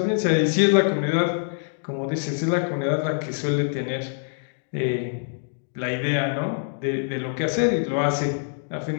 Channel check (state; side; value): silent; right; digital silence